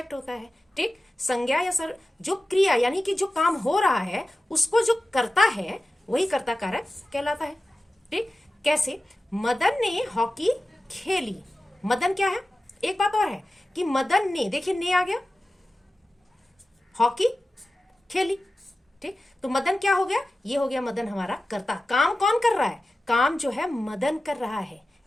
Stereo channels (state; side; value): normal; both; correlation 0.94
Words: होता है। ठीक। संज्ञा या जो क्रिया यानी कि जो काम हो रहा है उसको जो करता है, वही कर्ता कारक कहलाता है। ठीक। कैसे? मदन ने हॉकी खेली। मदन क्या है? एक बात और है कि मदन ने, देखिए ने आ गया, हॉकी खेली। ठीक। तो मदन क्या हो गया? ये हो गया मदन हमारा कर्ता। काम कौन कर रहा है? काम जो है मदन कर रहा है।